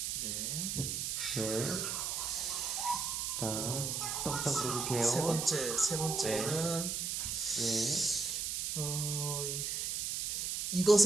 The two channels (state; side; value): noise; right; hiss, 1 dB below the sound